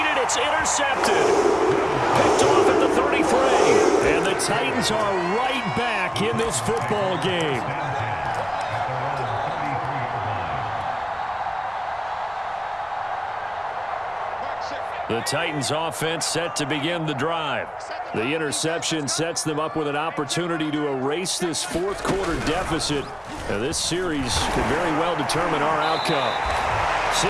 It's intercepted. Picked off at the 33. And the Titans are right back in this football game. The Titans offense set to begin the drive. The interception sets them up with an opportunity to erase this 4th quarter deficit. Now, this series could very well determine our outcome.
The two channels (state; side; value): identical; both; correlation 1.00